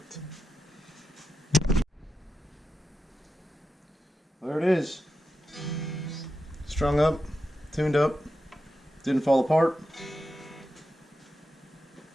There it is. Strung up, tuned up, didn't fall apart.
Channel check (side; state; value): both; normal; correlation 0.89